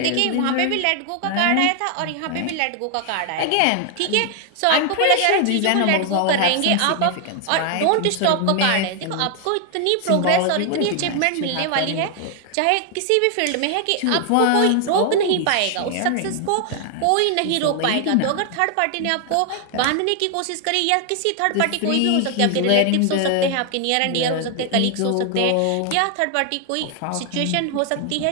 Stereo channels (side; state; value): both; different; correlation 0.00